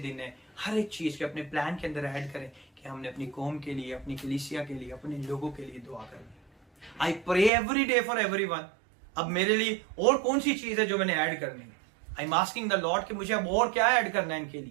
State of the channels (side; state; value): left; drops out; at 7.5 s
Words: है, हर एक चीज के अपने प्लान के अंदर ऐड करें कि हमने अपनी कौम के लिए, अपनी कलीसिया के लिए, अपने लोगों के लिए दुआ करनी। I pray every day for everyone. अब मेरे लिए और कौन सी चीज है जो मैंने ऐड करनी है? I am asking the Lord कि मुझे अब और क्या ऐड करना है इनके